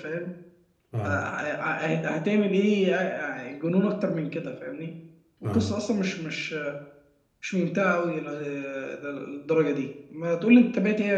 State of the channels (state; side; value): identical; both; correlation 1.00